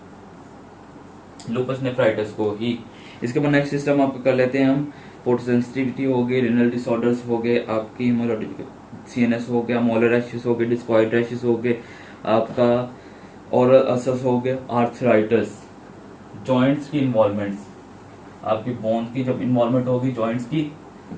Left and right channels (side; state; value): both; identical; correlation 1.00